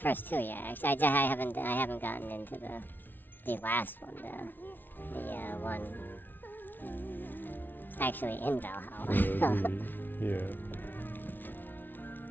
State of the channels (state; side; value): late; right; 0.092 ms